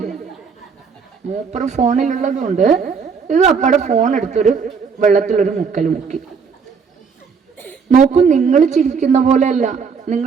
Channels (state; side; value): quieter; left; 5.8 dB